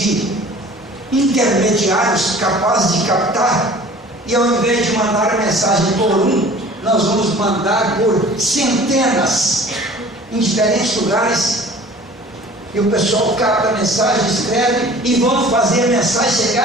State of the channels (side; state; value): both; normal; correlation 0.46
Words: intermediários capazes de captar, e ao invés de mandar a mensagem por um, nós vamos mandar por centenas em diferentes lugares. E o pessoal capta a mensagem, escreve e vão fazer a mensagem